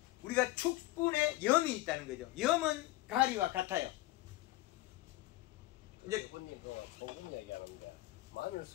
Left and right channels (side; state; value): right; quieter; 17.9 dB